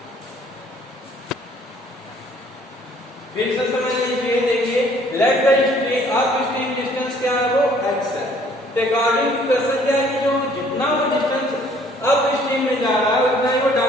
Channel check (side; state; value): both; normal; correlation 0.59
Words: फिर से समझ लीजिए, देखिए लेट द अपस्ट्रीम डिस्टेंस क्या है, वो x है। तो अकॉर्डिंग टू क्वेश्चन क्या है कि जो जितना वो डिस्टेंस अपस्ट्रीम में जा रहा है उतना ही वो